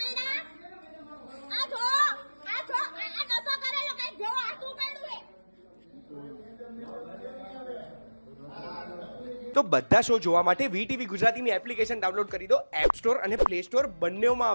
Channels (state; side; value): inverted; both; correlation -1.00